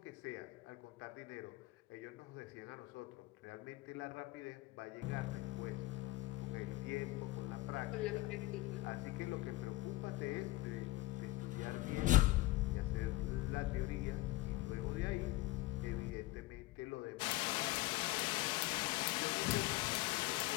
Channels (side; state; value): right; quieter; 19.1 dB